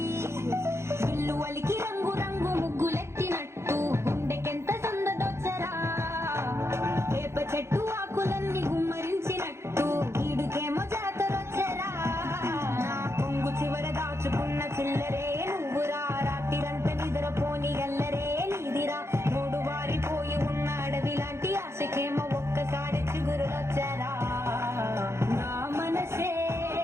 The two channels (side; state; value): left; late; 0.13 ms